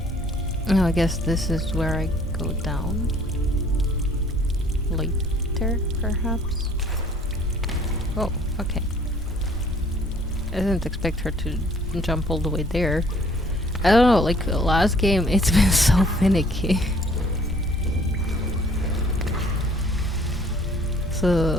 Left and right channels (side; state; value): both; normal; correlation 0.58